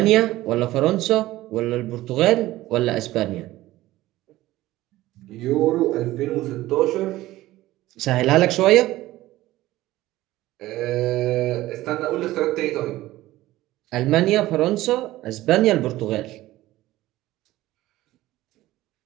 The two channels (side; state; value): left; quieter; 16.6 dB